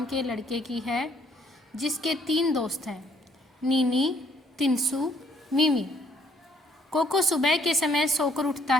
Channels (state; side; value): normal; both; correlation 0.65